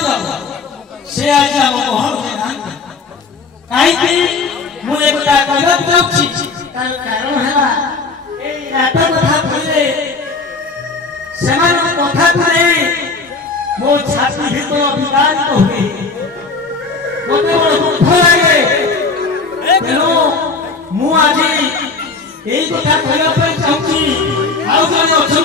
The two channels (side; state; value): right; quieter; 4.2 dB